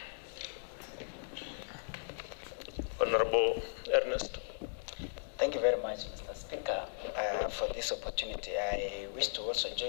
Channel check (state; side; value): silent; right; digital silence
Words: Honorable Ernest. Thank you very much, Mr. Speaker, for this opportunity. I wish to also